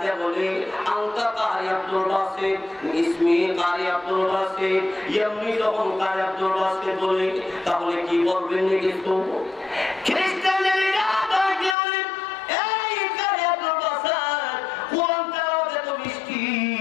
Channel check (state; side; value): drops out; right; at 11.8 s